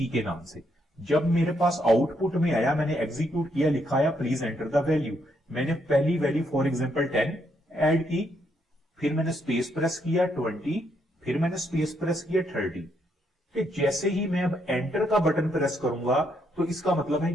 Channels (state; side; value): normal; both; correlation 0.75